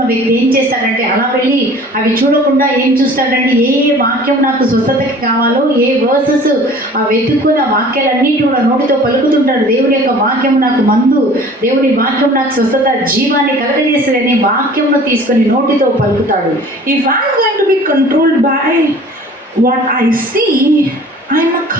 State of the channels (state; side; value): normal; both; correlation 0.47